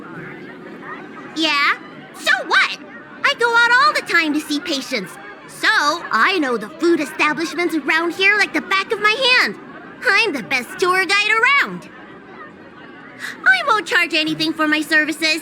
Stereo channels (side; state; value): both; identical; correlation 1.00